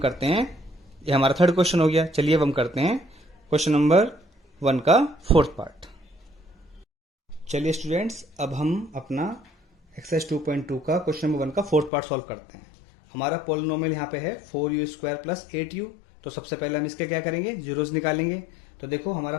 हैं, ये हमारा थर्ड क्वेश्चन हो गया। चलिए अब हम करते हैं क्वेश्चन नंबर 1 का फोर्थ पार्ट। चलिए स्टूडेंट्स, अब हम अपना एक्सरसाइज 2.2 का क्वेश्चन नंबर 1 का फोर्थ पार्ट सॉल्व करते हैं। हमारा पोलिनोमियल यहाँ पे है 4u² प्लस 8u। तो सबसे पहले हम इसके क्या करेंगे, जीरोस निकालेंगे। तो देखो हमारा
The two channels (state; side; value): drops out; right; at 11.9 s